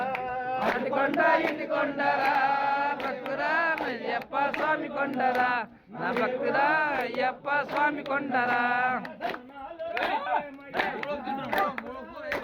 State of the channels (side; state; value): both; identical; correlation 1.00